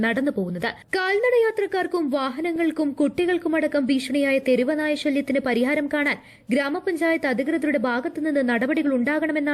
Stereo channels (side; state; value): both; identical; correlation 1.00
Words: നടന്നു പോകുന്നത്. കാൽനടയാത്രക്കാർക്കും വാഹനങ്ങൾക്കും കുട്ടികൾക്കുമടക്കം ഭീഷണിയായ തെരുവ് നായ ശല്യത്തിന് പരിഹാരം കാണാൻ ഗ്രാമപഞ്ചായത്ത് അധികൃതരുടെ ഭാഗത്തുനിന്ന് നടപടികൾ